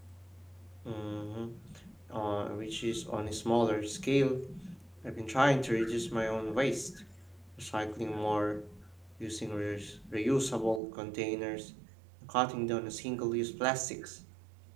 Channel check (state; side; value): drops out; left; at 10.8 s